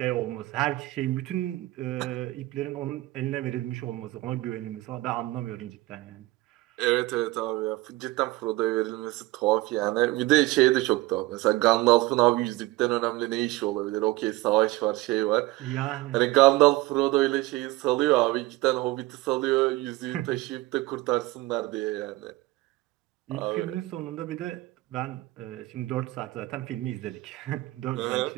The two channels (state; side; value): quieter; left; 19.0 dB